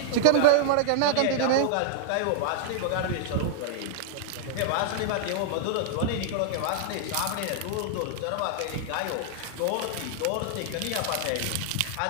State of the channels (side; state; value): both; different; correlation -0.01